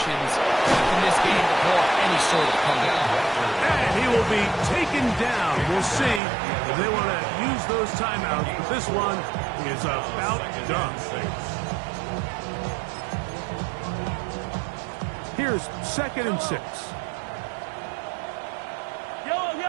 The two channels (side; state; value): left; drops out; at 6.2 s